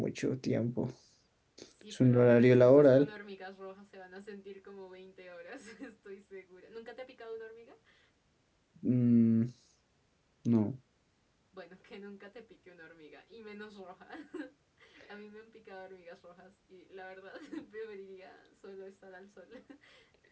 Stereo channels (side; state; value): both; identical; correlation 1.00